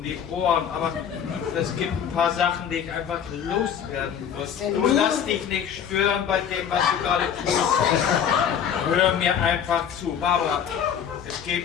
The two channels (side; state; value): right; quieter; 8.4 dB